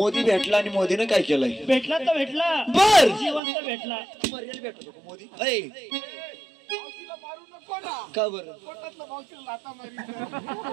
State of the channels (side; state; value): left; drops out; at 3.4 s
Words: भेटला आणि मोदीनं काय केलंय? भेटला तर भेटला, बर जिवंत भेटला. मरेल भेटतो का मोदी? ऐ का बर